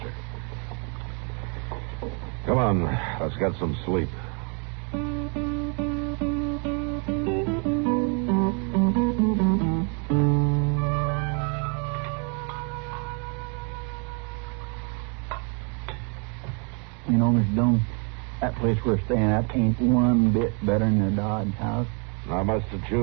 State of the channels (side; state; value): left; quieter; 37.4 dB